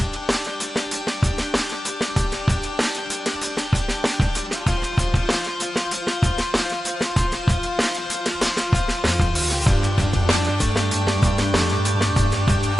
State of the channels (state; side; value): normal; both; correlation 0.93